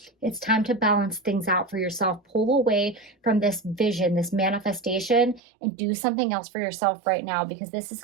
It's time to balance things out for yourself. Pull away from this vision, this manifestation, and do something else for yourself right now, because this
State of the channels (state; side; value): drops out; left; at 5.4 s